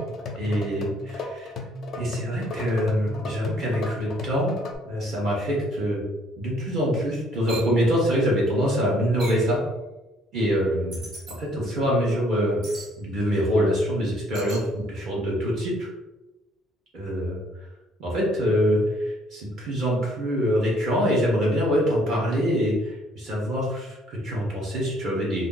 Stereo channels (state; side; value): normal; both; correlation 0.64